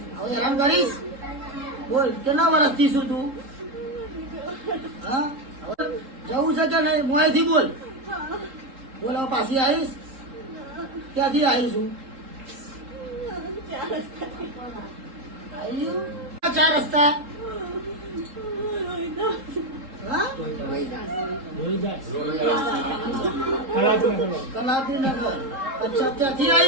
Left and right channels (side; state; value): left; late; 3.8 ms